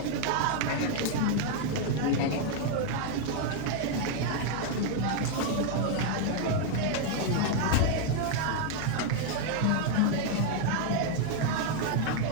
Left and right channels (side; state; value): both; different; correlation 0.00